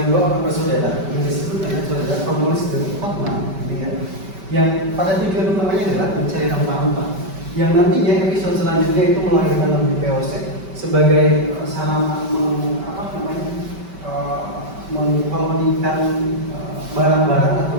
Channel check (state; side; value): late; left; 5.2 ms